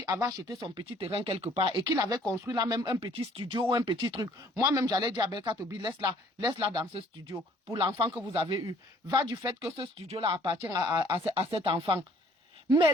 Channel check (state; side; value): normal; both; correlation 0.58